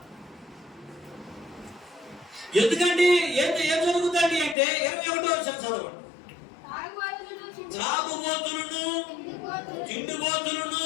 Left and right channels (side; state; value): right; drops out; at 4.5 s